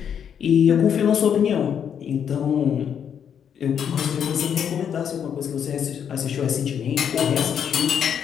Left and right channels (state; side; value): quieter; right; 8.2 dB